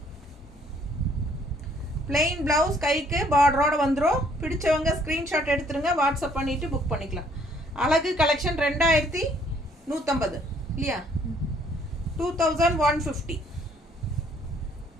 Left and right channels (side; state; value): both; normal; correlation 0.63